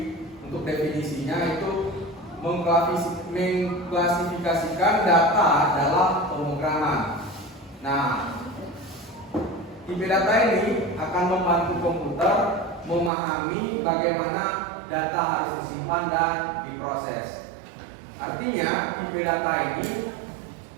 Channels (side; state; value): left; drops out; at 13.1 s